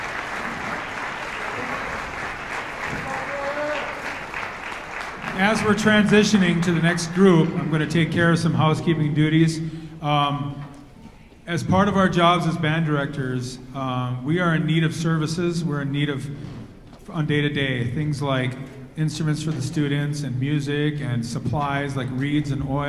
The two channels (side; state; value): both; identical; correlation 1.00